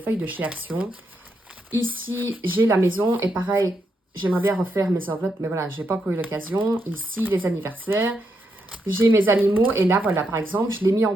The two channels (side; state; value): both; normal; correlation 0.81